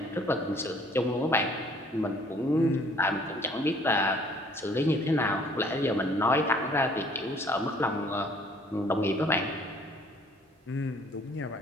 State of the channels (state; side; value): normal; both; correlation 0.57